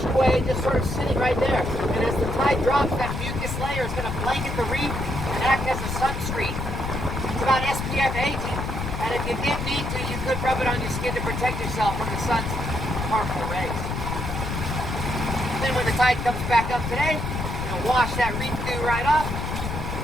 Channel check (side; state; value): left; noise; rumble, 4 dB below the sound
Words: away, just sort of sitting right there. And as the tide drops, that mucus layer is going to blanket the reef and act as a sunscreen. It's about SPF 18, and if you did need to, you could rub it on your skin to protect yourself from the sun's harmful rays. Then when the tide comes back up today, wash that reef dew right off,